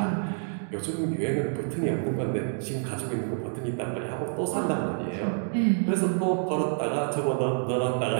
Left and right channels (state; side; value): silent; left; digital silence